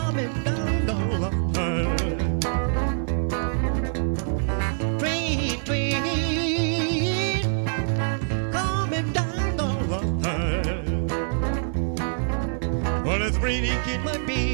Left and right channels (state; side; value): silent; left; digital silence